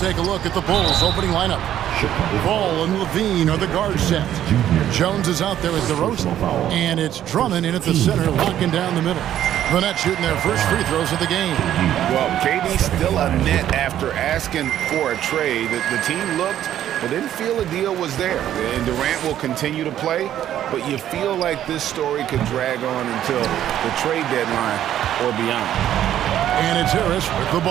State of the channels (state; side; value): quieter; left; 11.4 dB